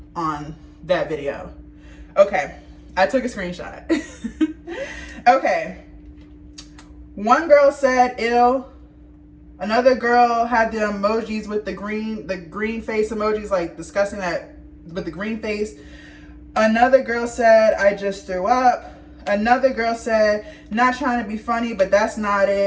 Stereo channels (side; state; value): both; identical; correlation 1.00